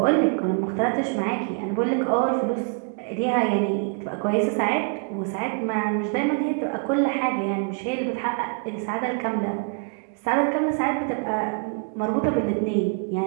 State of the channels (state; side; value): quieter; left; 38.7 dB